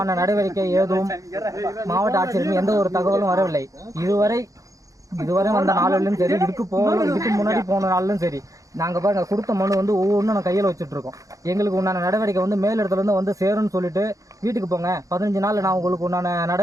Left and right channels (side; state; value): left; late; 0.16 ms